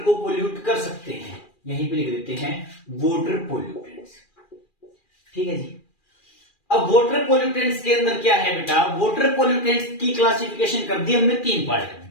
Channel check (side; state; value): right; late; 2.4 ms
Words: पोल्यूट कर सकते हैं, यहीं पे लिख देते हैं वाटर पोल्यूटेंट्स। ठीक है जी, अब वाटर पोल्यूटेंट्स के अंदर क्या है बेटा, वाटर पोल्यूटेंट्स की क्लासिफिकेशन कर दी हमने 3 पार्ट